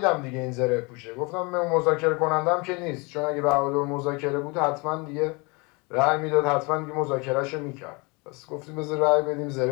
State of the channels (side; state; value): right; quieter; 28.4 dB